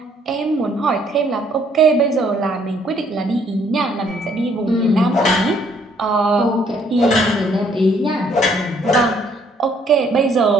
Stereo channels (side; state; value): both; normal; correlation 0.65